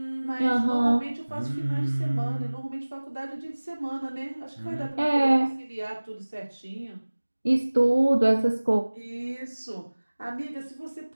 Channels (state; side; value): inverted; both; correlation -1.00